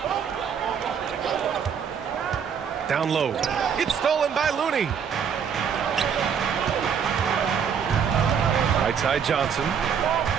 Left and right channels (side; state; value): left; quieter; 7.3 dB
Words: Down low. It's stolen by Looney. Right side Johnson.